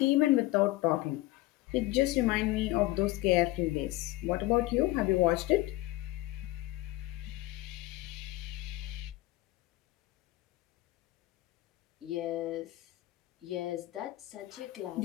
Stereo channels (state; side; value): quieter; right; 17.8 dB